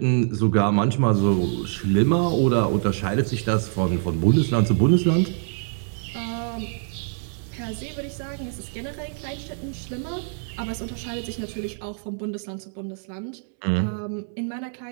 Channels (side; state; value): left; silent; 62 dB below the other